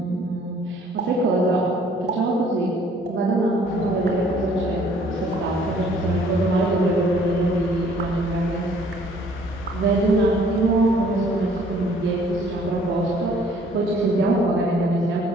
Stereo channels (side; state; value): both; normal; correlation 0.58